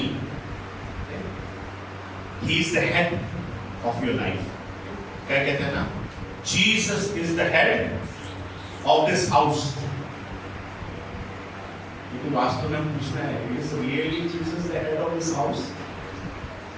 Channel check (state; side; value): identical; both; correlation 1.00